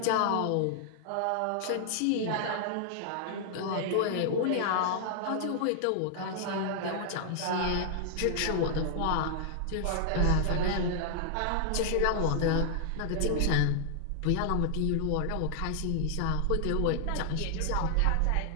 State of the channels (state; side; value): different; both; correlation -0.01